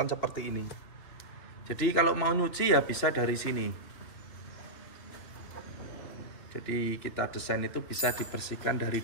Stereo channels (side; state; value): right; late; 2.9 ms